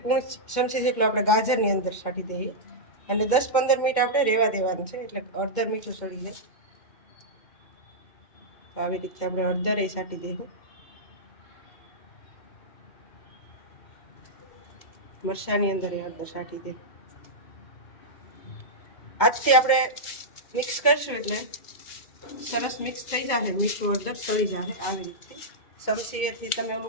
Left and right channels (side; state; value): right; late; 2.2 ms